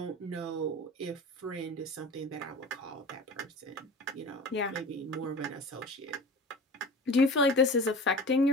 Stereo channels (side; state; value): both; normal; correlation 0.37